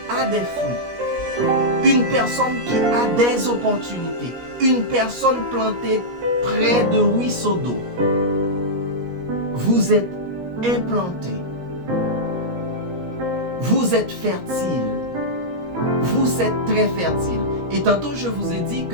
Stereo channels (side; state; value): left; late; 17 ms